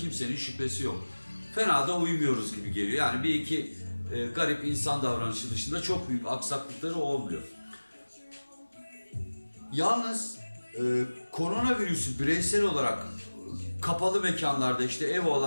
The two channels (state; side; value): inverted; both; correlation -1.00